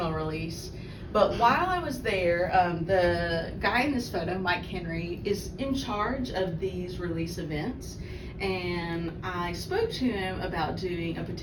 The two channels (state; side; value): identical; both; correlation 1.00